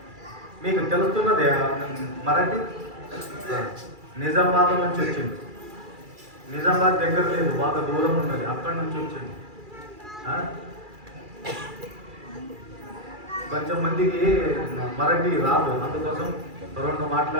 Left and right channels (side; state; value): left; late; 2.4 ms